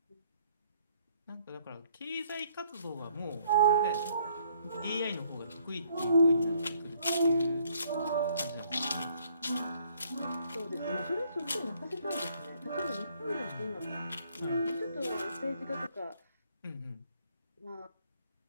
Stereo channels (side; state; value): both; inverted; correlation -0.65